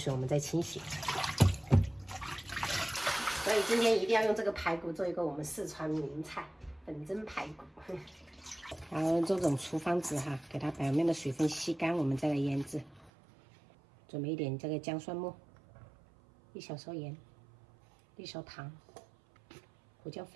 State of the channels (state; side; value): drops out; left; at 13.1 s